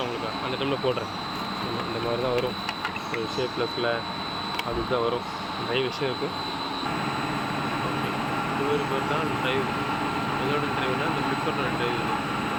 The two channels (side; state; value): both; identical; correlation 1.00